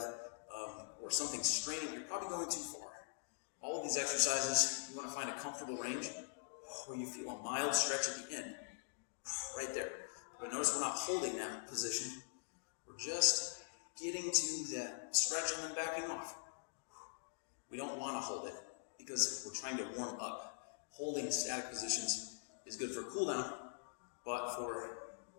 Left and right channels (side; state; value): right; silent; digital silence